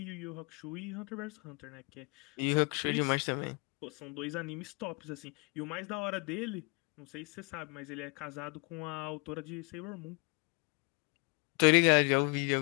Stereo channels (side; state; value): right; quieter; 30.8 dB